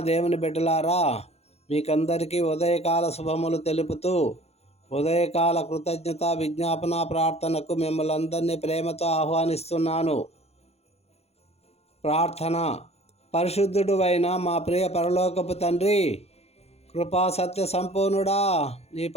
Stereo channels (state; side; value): late; right; 0.30 ms